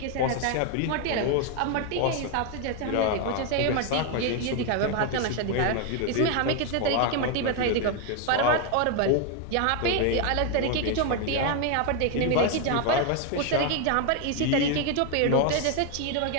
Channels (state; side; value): different; both; correlation 0.01